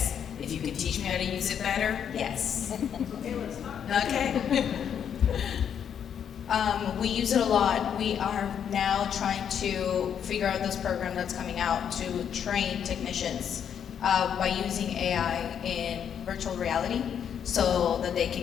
If you could teach me how to use it better? Yes. Okay. We use it a lot. We are now trying to figure out this program that's coming out to train technicians by using AI in virtual reality, so that they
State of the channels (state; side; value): quieter; right; 8.4 dB